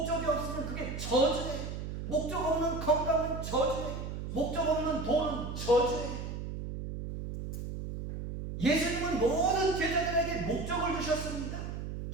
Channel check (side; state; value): right; noise; hum, 6 dB below the sound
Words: 없으면 그게 저주예요. 목적 없는 건강은 저주예요. 목적 없는 돈은 저주예요. 예수님은 모든 제자들에게 목적을 주셨습니다.